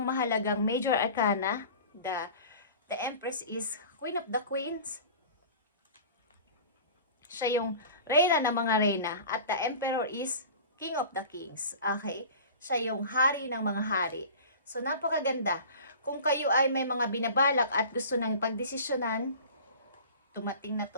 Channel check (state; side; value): inverted; both; correlation -0.39